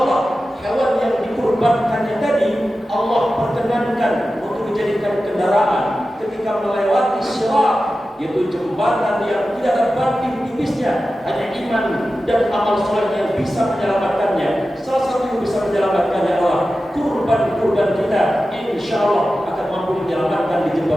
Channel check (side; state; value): both; normal; correlation 0.93